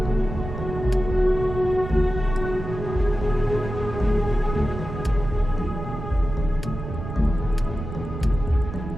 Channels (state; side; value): noise; right; rumble, 8 dB below the sound